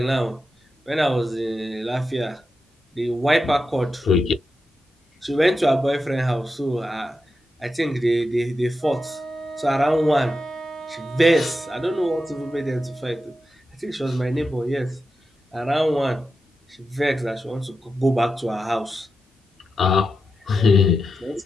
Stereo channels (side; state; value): both; normal; correlation 0.89